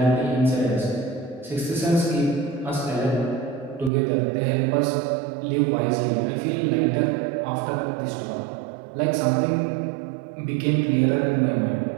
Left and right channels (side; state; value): left; drops out; at 3.9 s